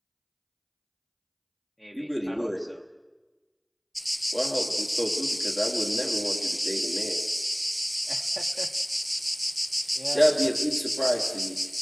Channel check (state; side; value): identical; both; correlation 1.00